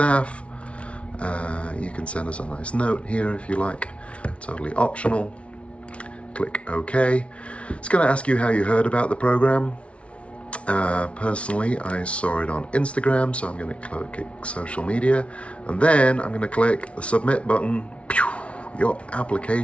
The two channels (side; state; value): right; late; 0.061 ms